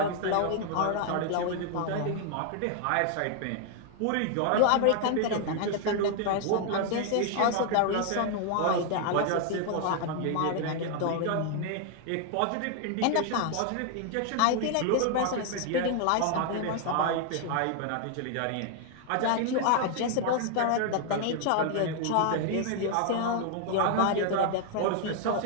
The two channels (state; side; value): different; both; correlation 0.00